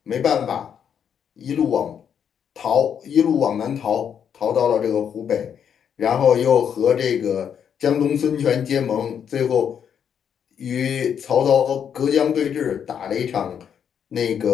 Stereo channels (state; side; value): quieter; right; 8.1 dB